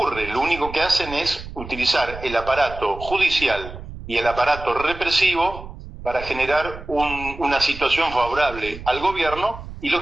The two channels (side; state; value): right; noise; rumble, 12 dB below the sound